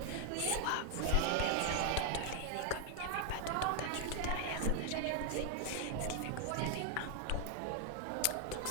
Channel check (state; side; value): different; both; correlation 0.00